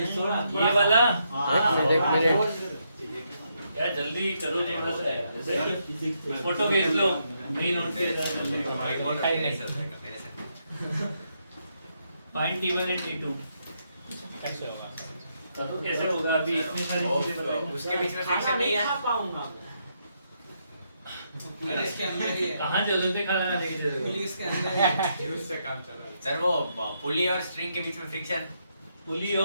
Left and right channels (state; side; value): inverted; both; correlation -0.78